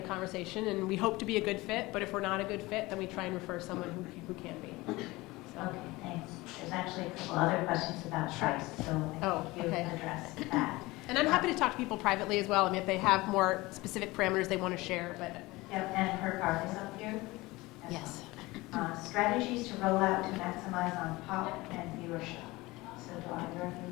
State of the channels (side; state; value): right; quieter; 20.9 dB